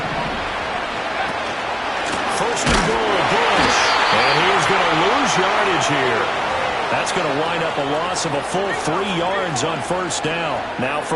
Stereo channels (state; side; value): identical; both; correlation 1.00